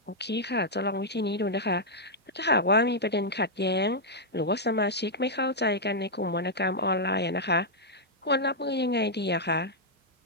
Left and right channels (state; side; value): normal; both; correlation -0.06